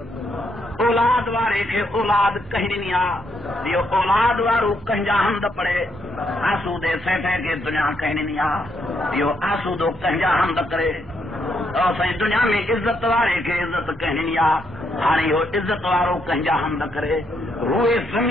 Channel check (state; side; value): normal; both; correlation 0.76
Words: اولاد وارے کے اولاد کہیں نہیں یہ اولاد وارو کہیں جا حمد پڑھے آسو دے سیٹھے کے دنیا کہیں نہیں یہ آسو دو کہیں جا حمد کرے اور سائیں دنیا میں عزت وارے کے عزت کہیں ہاں وہ عزت وارو کہیں جا حمد کرے روئے